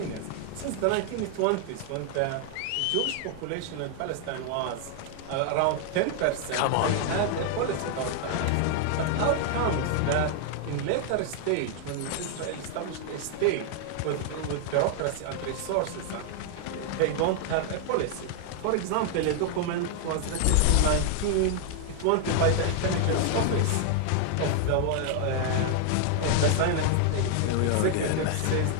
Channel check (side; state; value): both; different; correlation 0.00